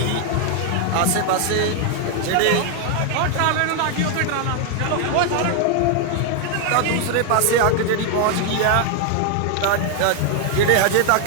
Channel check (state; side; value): different; both; correlation 0.00